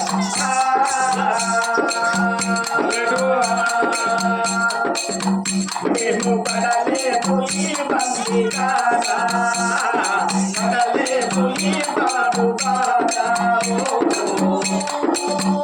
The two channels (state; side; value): identical; both; correlation 1.00